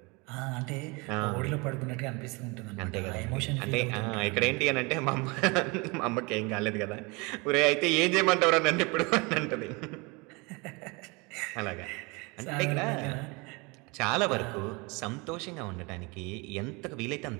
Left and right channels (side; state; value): left; quieter; 27.5 dB